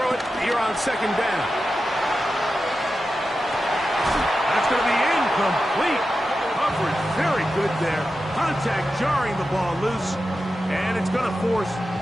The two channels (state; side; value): normal; both; correlation 0.91